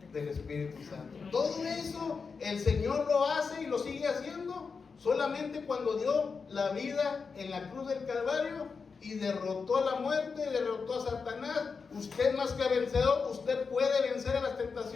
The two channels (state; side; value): quieter; right; 5.1 dB